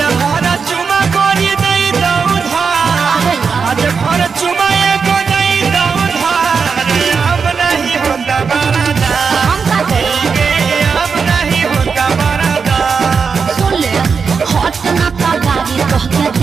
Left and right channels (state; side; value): quieter; left; 5.6 dB